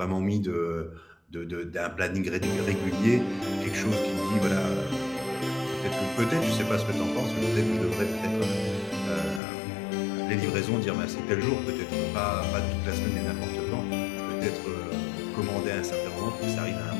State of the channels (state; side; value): drops out; right; at 9.4 s